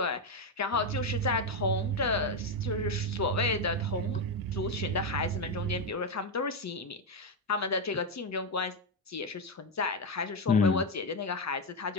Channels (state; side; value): normal; both; correlation 0.07